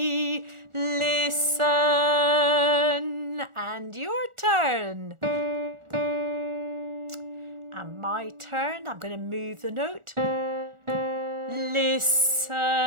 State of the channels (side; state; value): left; late; 1.4 ms